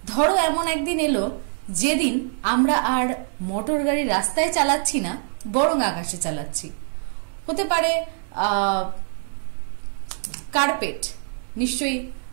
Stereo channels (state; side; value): silent; left; 62 dB below the other